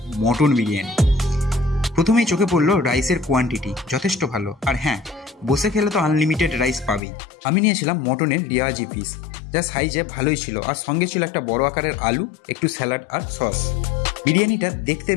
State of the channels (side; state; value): right; drops out; at 7.0 s